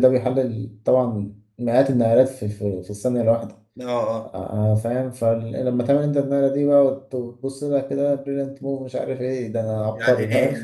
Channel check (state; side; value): identical; both; correlation 1.00